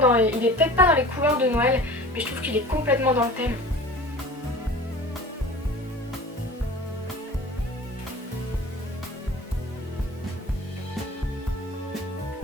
il est peut-être pas dans les couleurs de Noël mais je trouve qu'il est complètement dans le thème.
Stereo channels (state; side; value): normal; both; correlation 0.41